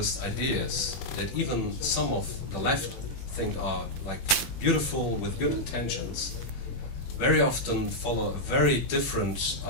ideas that even some of the left think are like beautiful with good intentions, very often follow a very different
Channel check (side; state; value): right; late; 21 ms